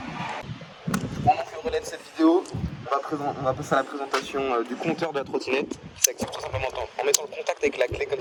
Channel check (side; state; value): both; identical; correlation 1.00